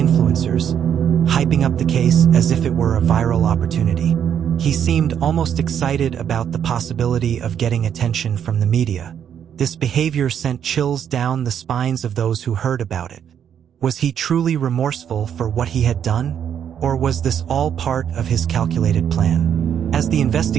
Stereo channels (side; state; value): left; quieter; 8.8 dB